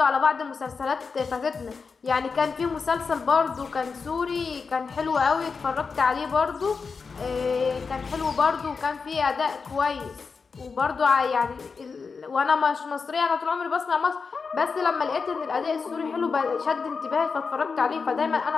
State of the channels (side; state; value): right; quieter; 5.1 dB